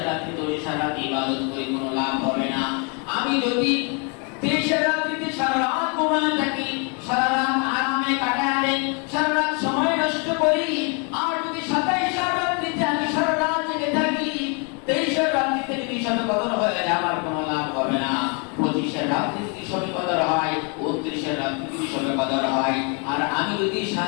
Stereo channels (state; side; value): quieter; right; 35.0 dB